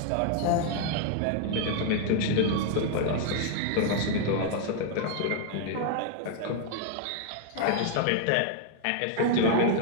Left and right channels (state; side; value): different; both; correlation 0.00